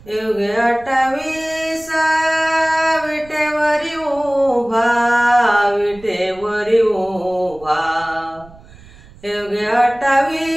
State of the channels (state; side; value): noise; right; rumble, 23 dB below the sound